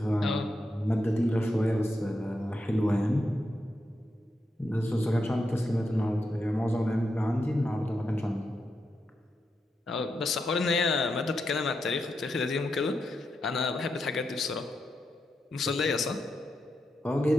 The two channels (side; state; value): both; normal; correlation 0.85